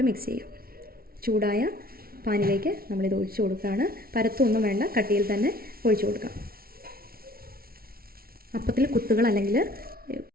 മിക്സ് ചെയ്യാം. ചൂടായ പാനിലേക്ക് നമ്മളിത് ഒഴിച്ചു കൊടുക്കുകയാണ്. പരത്തൊന്നും വേണ്ട, കട്ടിയിൽ തന്നെ ഒഴിച്ചു കൊടുക്കാം. അപ്പത്തിൽ കുത്തുകൾ അല്ലെങ്കിൽ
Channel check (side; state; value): left; late; 0.44 ms